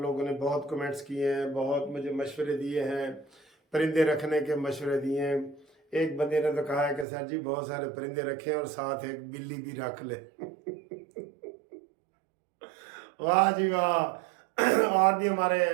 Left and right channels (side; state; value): left; drops out; at 7.1 s